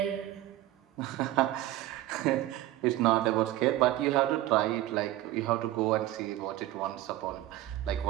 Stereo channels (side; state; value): left; quieter; 15.1 dB